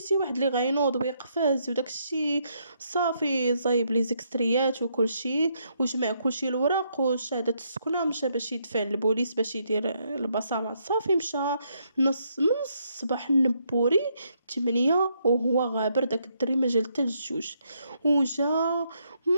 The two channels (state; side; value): inverted; both; correlation -0.75